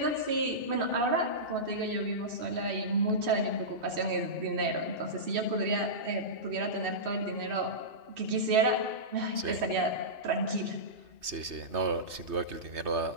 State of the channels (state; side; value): late; left; 3.3 ms